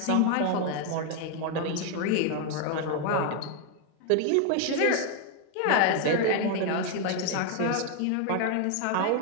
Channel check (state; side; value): different; both; correlation 0.01